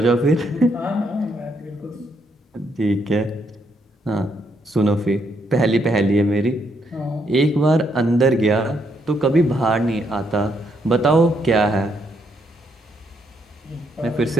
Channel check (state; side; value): normal; both; correlation 0.75